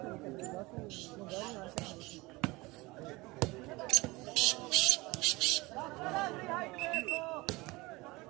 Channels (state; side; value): quieter; left; 22.5 dB